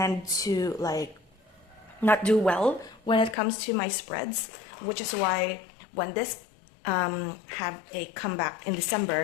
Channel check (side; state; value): right; drops out; at 3.4 s